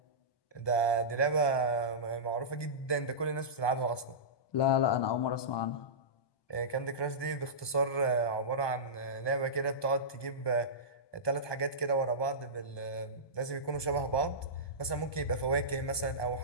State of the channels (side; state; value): right; late; 1.2 ms